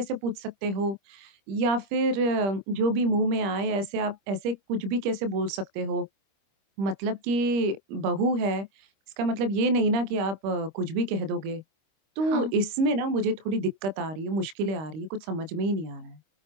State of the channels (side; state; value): left; late; 25 ms